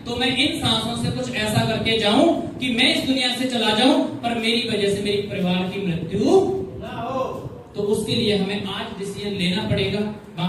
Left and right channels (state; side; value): identical; both; correlation 1.00